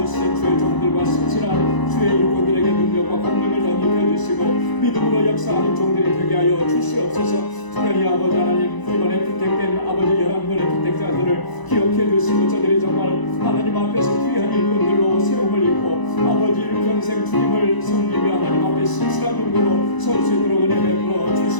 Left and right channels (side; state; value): right; late; 1.0 ms